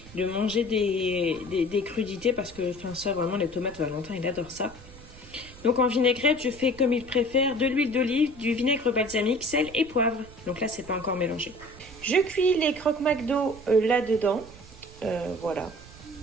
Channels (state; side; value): noise; right; rumble, 19 dB below the sound